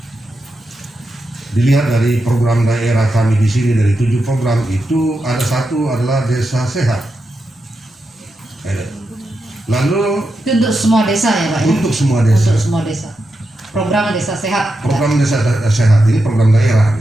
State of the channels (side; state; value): both; normal; correlation 0.87